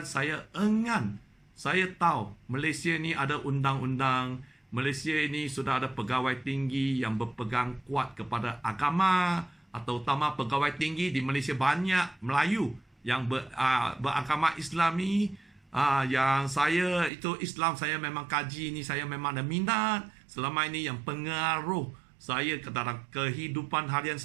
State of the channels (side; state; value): left; drops out; at 17.1 s